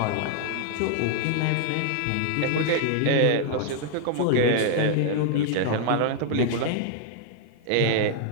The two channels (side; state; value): both; different; correlation 0.00